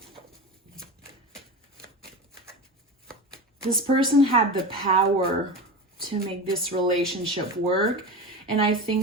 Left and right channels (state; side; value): normal; both; correlation 0.26